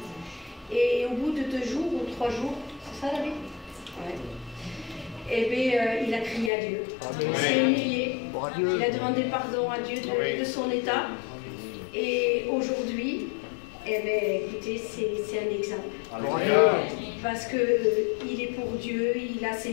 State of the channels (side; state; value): right; drops out; at 6.5 s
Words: Et au bout de 2 jours ou 3 jours, c'est ça David? Ouais. Eh bien, il a crié à Dieu. Il s'est humilié. Il a demandé pardon à Dieu de son état. Et aujourd'hui, eh bien, écoutez, c'est un exemple. Parce qu'il est pour Dieu, il a ses